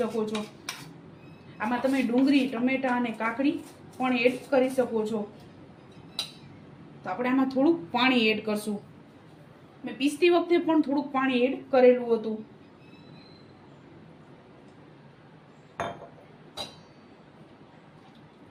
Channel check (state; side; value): identical; both; correlation 1.00